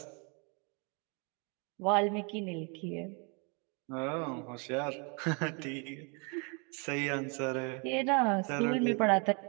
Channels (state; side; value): quieter; left; 34.7 dB